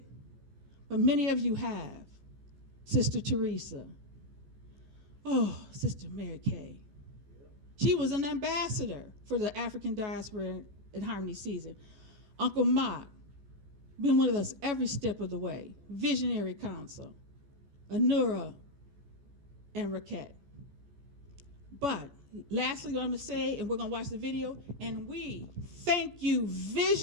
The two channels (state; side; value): late; left; 14 ms